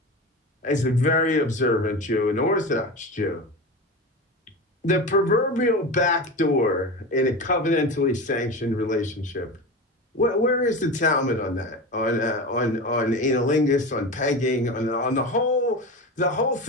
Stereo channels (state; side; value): normal; both; correlation 0.26